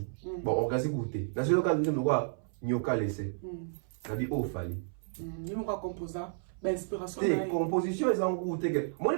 bon orgazi goûté dans ce cas nous quoi nyoka laissé ça dit oh fallait ni mon composant ben inspiration des compositions ils ont goûté que moi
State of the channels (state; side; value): silent; left; 56 dB below the other